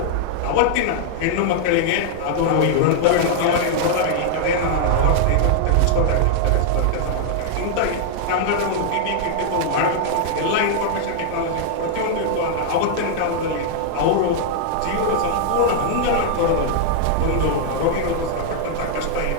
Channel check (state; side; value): different; both; correlation -0.01